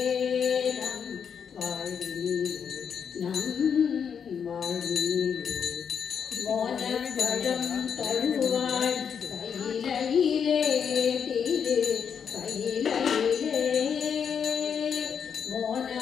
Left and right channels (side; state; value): right; quieter; 7.2 dB